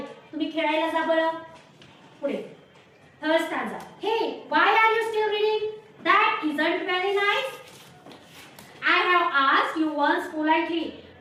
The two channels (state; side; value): identical; both; correlation 1.00